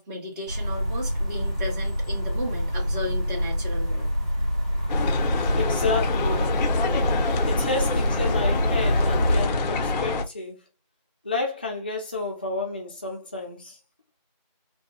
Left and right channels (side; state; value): both; inverted; correlation -0.69